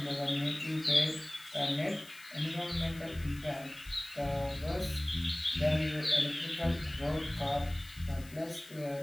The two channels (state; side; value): noise; left; hiss, 20 dB below the sound